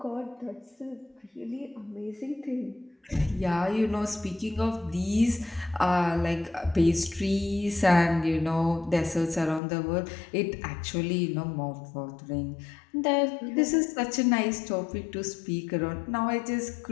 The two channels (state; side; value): drops out; right; at 9.6 s